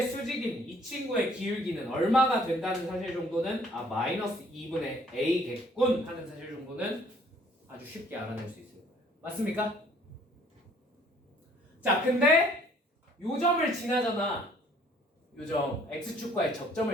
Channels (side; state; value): both; normal; correlation 0.59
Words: 수직인 이 친구의 기울기는 얼마가 된다는 사실 정도는 마이너스 2분의 a겠군 하는 사실 정도는 아주 쉽게 알아낼 수 있을 거예요. 맞습니까? 자, 근데 요 점을 지나잖아. 요 점 x축과의